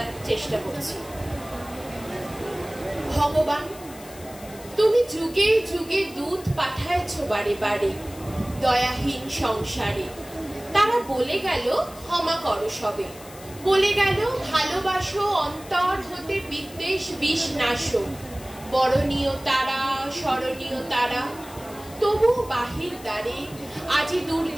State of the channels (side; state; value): left; noise; hiss, 19 dB below the sound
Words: চেষ্টা করছি। ভগবান, তুমি যুগে যুগে দূত পাঠাইছ বাড়ি বাড়ি দয়াহীন সংসারে। তারা বলে গেল ক্ষমা করো সবে, বলে গেল ভালোবাসো অন্তর হতে বিদ্বেষ বিষ নাশো। বরণীয় তারা স্মরণীয় তারা, তবু বাহির দ্বারে আজি